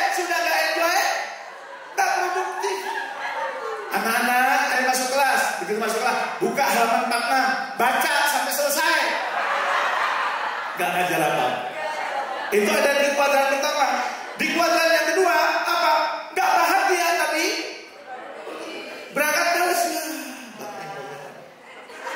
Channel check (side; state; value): both; identical; correlation 1.00